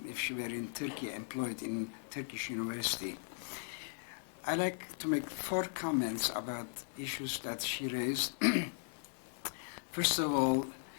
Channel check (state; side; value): silent; right; digital silence